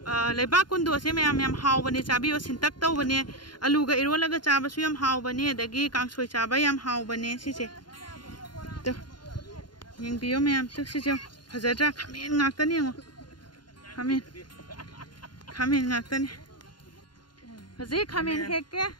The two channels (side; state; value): right; late; 0.71 ms